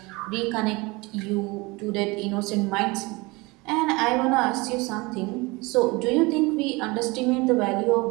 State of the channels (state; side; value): quieter; left; 24.6 dB